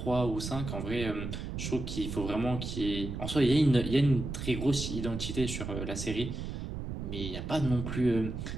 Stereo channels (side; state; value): right; noise; rumble, 5 dB below the sound